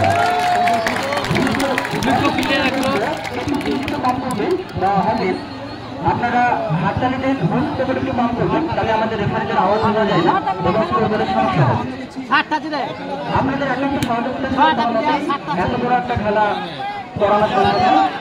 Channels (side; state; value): both; identical; correlation 1.00